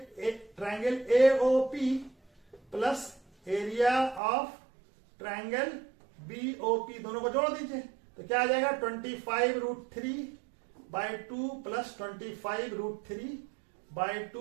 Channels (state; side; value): drops out; left; at 4.2 s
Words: AOP plus area of triangle BOP, दोनों को जोड़ दीजिए। तो क्या आ जाएगा, 25√3/2 प्लस